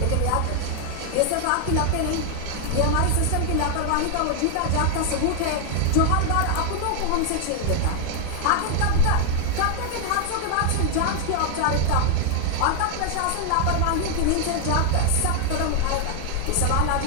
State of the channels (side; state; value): both; different; correlation 0.00